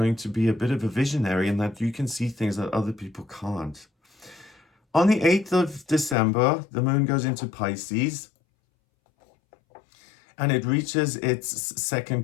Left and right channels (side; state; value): right; drops out; at 6.2 s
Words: to be a bit of a visionary and that you can see things that other people can't. On the 8th of December, the moon goes into Pisces and it reaches its second